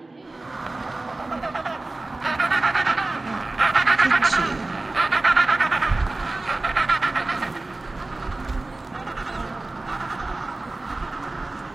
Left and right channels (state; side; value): quieter; left; 3.1 dB